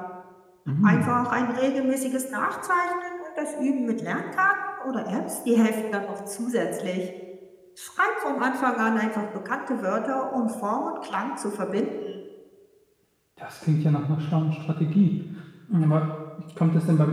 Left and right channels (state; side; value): identical; both; correlation 1.00